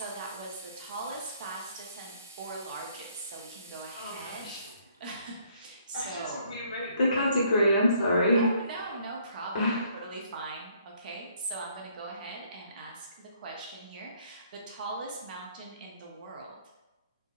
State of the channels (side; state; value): both; inverted; correlation -0.64